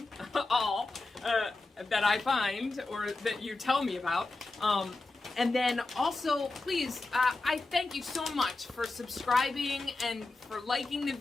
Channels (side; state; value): right; quieter; 3.2 dB